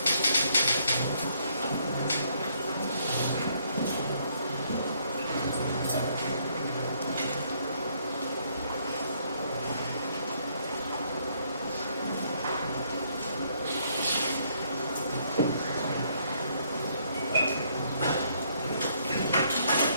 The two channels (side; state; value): both; inverted; correlation -0.69